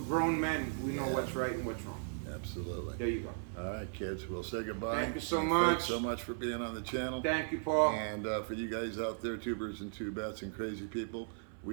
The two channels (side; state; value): left; silent; 53 dB below the other